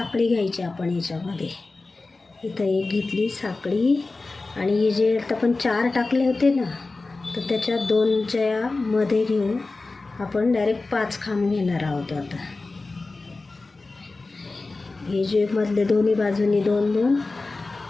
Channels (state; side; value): quieter; right; 3.5 dB